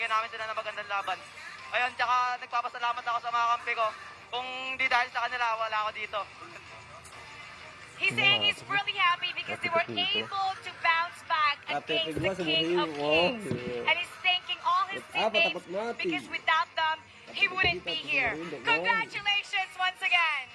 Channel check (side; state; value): both; identical; correlation 1.00